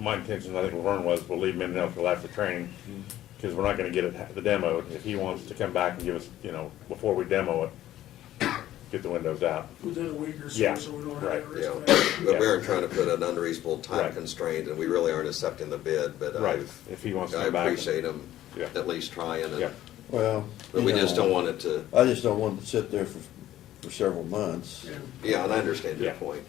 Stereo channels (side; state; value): right; quieter; 13.5 dB